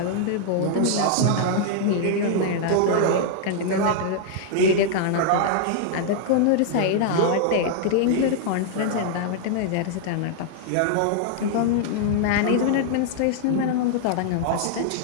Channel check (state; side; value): different; both; correlation -0.01